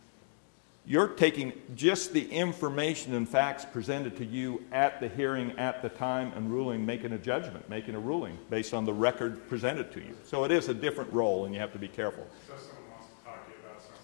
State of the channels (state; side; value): silent; right; digital silence